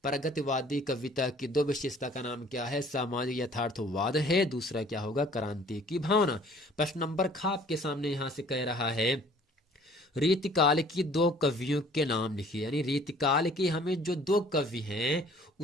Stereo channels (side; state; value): both; normal; correlation 0.54